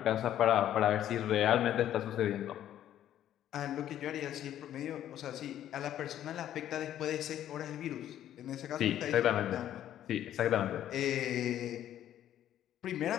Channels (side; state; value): right; quieter; 11.5 dB